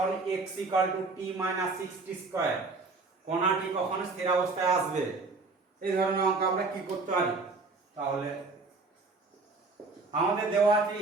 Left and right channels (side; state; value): left; quieter; 3.8 dB